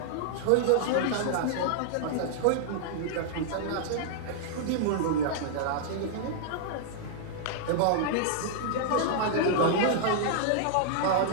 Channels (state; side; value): different; both; correlation -0.01